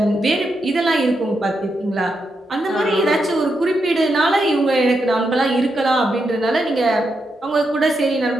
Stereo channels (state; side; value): normal; both; correlation 0.84